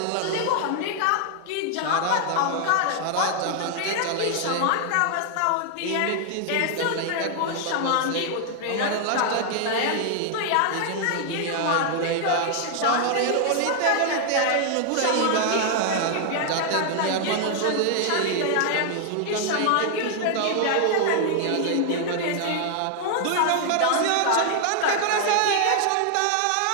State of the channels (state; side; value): different; both; correlation 0.00